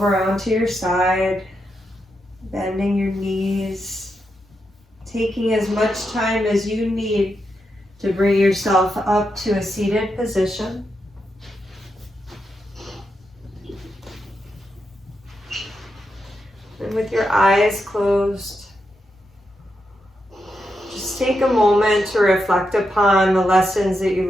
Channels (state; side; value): normal; both; correlation 0.85